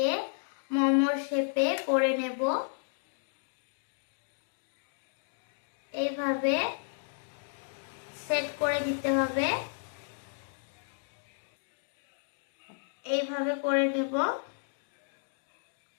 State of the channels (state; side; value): silent; right; digital silence